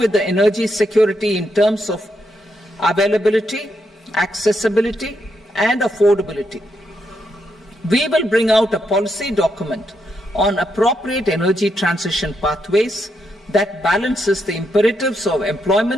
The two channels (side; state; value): both; normal; correlation 0.80